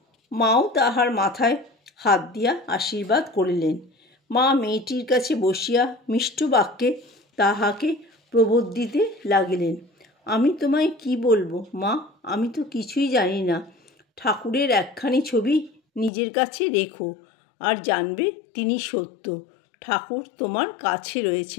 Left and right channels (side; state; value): right; drops out; at 16.1 s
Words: মাও তাহার মাথায় হাত দিয়া আশীর্বাদ করিলেন। মা মেয়েটির কাছে বসিয়া মিষ্ট বাক্যে তাহাকে প্রবোধিতে লাগিলেন। আমি তোমায় কি বলবো মা, আমি তো কিছুই জানি না। ঠাকুরের একখানি ছবি নিজের কাছে রেখো, আর জানবে তিনি সত্য। ঠাকুর তোমার কাছে